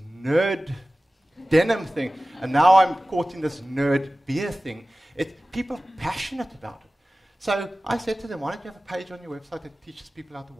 nerd denim thing? And now I'm caught in this nerd beer thing. People are passionate about it. So I said to them, why don't you have a page on your website that teaches people how to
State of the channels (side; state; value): both; normal; correlation 0.97